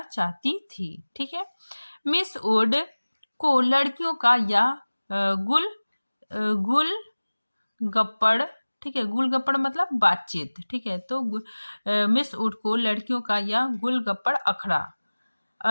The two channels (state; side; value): inverted; both; correlation -1.00